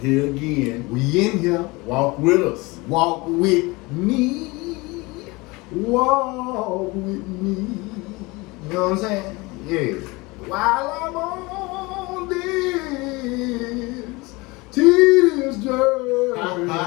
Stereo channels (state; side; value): quieter; right; 24.0 dB